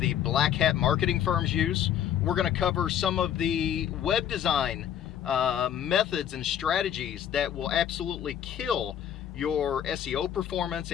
black hat marketing firms use. We're going to cover some of the web design methods and strategies that will absolutely kill your SEO performance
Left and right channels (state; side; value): quieter; right; 9.9 dB